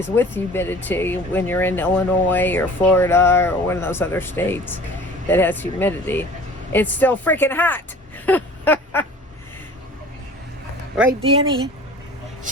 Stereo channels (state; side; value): normal; both; correlation 0.44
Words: with humidity when you're in Illinois or Florida or one of those other states that has humidity. It's still freaking hot. Right, Danny?